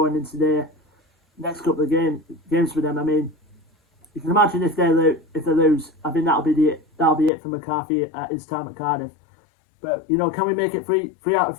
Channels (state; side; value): drops out; right; at 7.3 s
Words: into the next couple of games for them. I mean, you can imagine if they lose, I think that'll be it for McCarthy at his time at Cardiff. But, you know, can we make it 3 out of